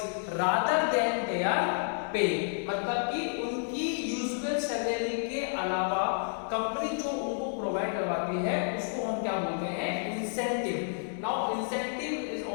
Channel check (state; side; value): silent; right; digital silence